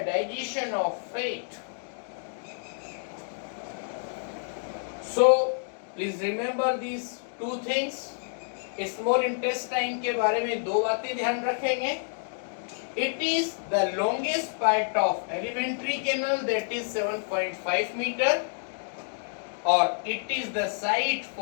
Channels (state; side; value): silent; right; digital silence